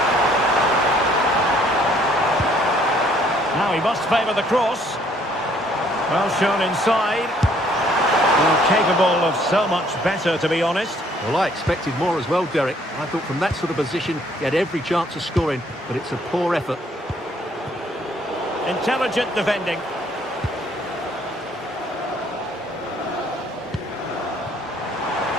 Now he must favour the cross. Well shown inside. Well, capable of so much better, to be honest. Well, I expected more as well, Derek. I thought from that sort of position, he had every chance of scoring, but it's a poor effort. Intelligent defending.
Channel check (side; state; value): both; normal; correlation 0.63